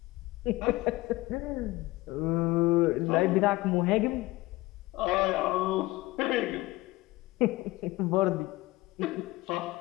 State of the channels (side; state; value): right; quieter; 19.7 dB